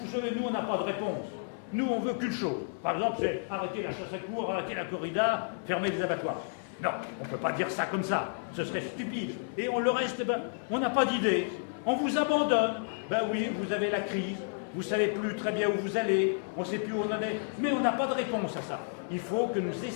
savez, nous, on n'a pas de réponse. Nous, on veut qu'une chose. Par exemple, c'est arrêter la chasse à courre, arrêter la corrida, fermer les abattoirs. Non, on ne peut pas dire ça comme ça. Ce serait stupide. Et on le reste, on n'a pas d'idée. On vous abandonne. Ben oui, vous avez la crise. Vous ne savez plus très bien où vous allez. On ne sait plus où on en est. Mais on n'a pas de réponse à ça. Il faut que nous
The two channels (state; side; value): silent; right; 57 dB below the other